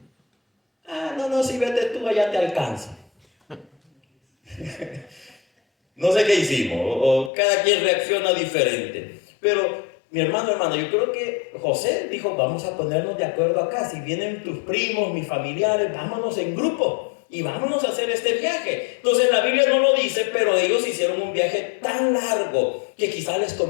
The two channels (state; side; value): drops out; right; at 7.3 s